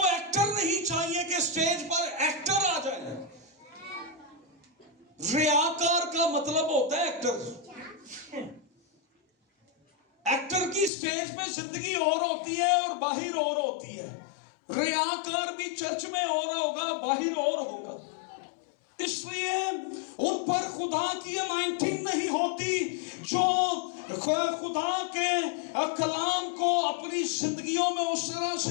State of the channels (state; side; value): drops out; right; at 10.9 s